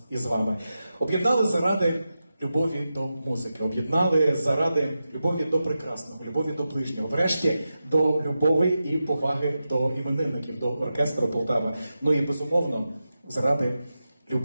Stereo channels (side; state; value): both; inverted; correlation -0.91